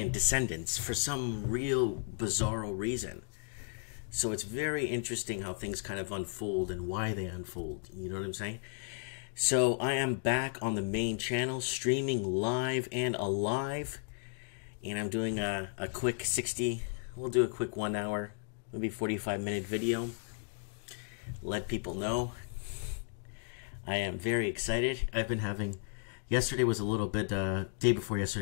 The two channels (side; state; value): right; silent; 55 dB below the other